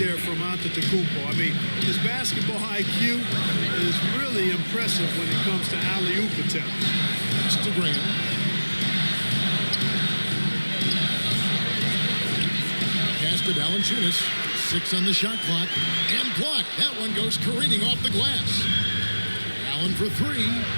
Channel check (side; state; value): both; inverted; correlation -1.00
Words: from Antetokounmpo. I mean, his basketball IQ is really impressive when it comes to alley-oop attempts. It's to Graham. Pass to Valanciunas. 6 on the shot clock. And blocked. That one goes careening off the glass. Allen for 3.